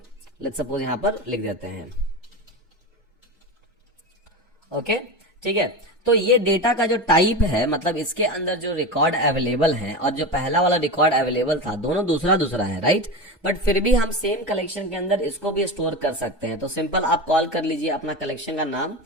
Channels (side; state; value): both; normal; correlation 0.23